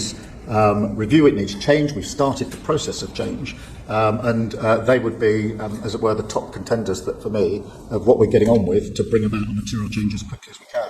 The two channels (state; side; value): identical; both; correlation 1.00